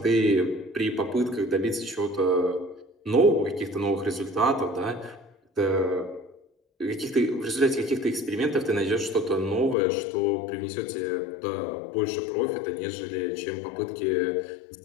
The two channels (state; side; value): drops out; right; at 9.8 s